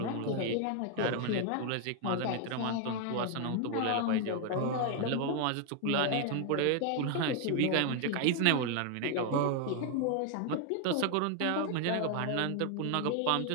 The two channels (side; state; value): both; different; correlation 0.00